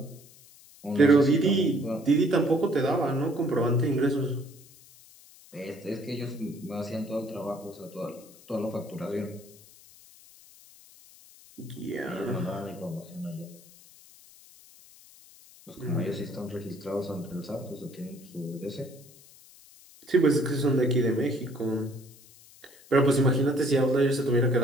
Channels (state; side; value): noise; left; hiss, 23 dB below the sound